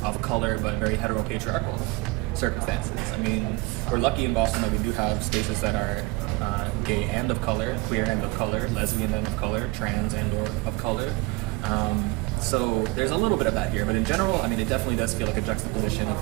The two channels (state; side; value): quieter; left; 23.9 dB